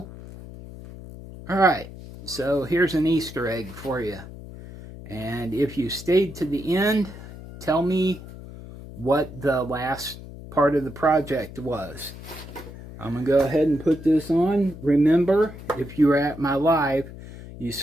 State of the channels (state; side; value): noise; left; hum, 14 dB below the sound